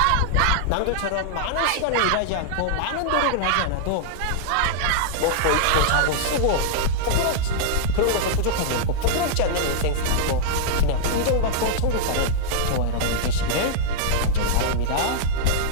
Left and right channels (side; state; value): both; different; correlation -0.02